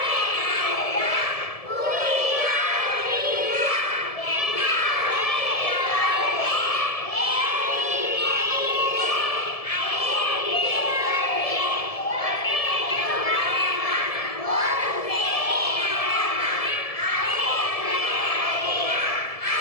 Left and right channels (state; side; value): late; right; 1.7 ms